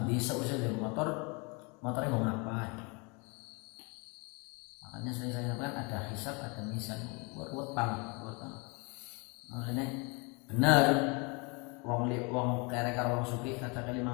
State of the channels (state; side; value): quieter; right; 30.7 dB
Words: bisa usah dari motornya mau ngapain. Makanya sering saya sampaikan ada hisab, ada mizan, buat banget. Makanya benar wong kere karo wong sugih kaca 500